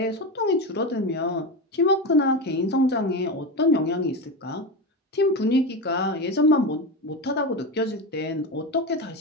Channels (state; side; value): normal; both; correlation 0.19